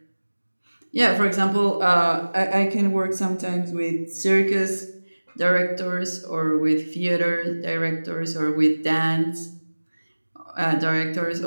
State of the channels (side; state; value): both; inverted; correlation -1.00